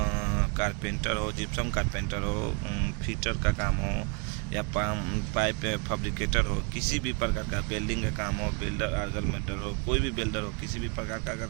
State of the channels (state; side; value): quieter; left; 30.7 dB